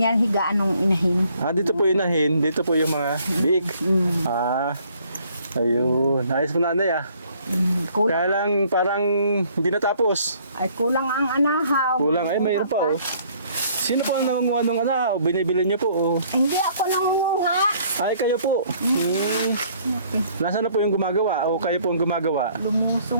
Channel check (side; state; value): both; inverted; correlation -0.61